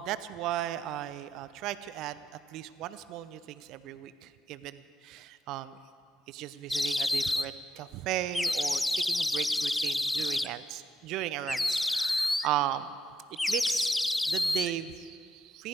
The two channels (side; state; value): both; normal; correlation 0.76